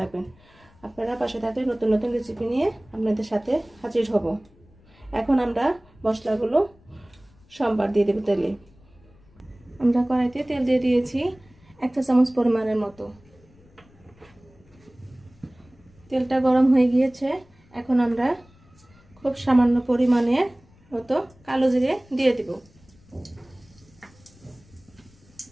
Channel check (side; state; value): left; noise; rumble, 28 dB below the sound